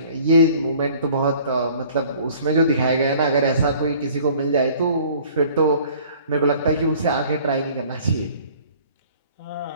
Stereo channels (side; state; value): both; inverted; correlation -0.52